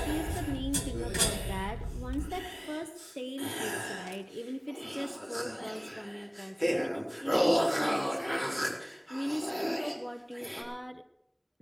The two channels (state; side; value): identical; both; correlation 1.00